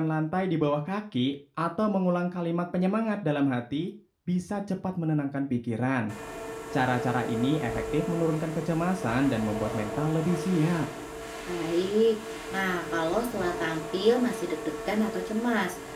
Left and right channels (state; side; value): identical; both; correlation 1.00